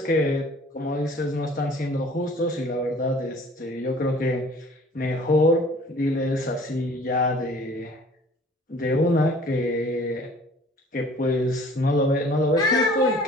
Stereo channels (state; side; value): normal; both; correlation 0.51